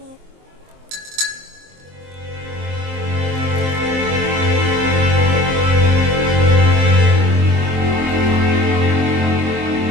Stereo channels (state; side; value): late; left; 23 ms